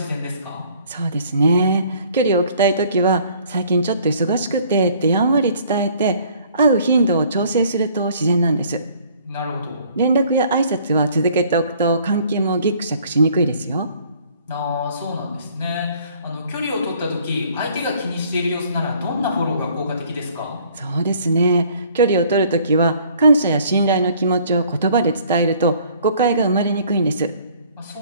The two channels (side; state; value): both; inverted; correlation -0.57